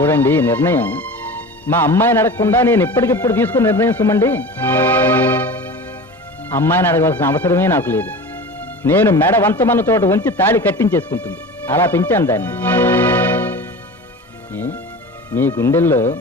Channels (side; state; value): both; normal; correlation 0.34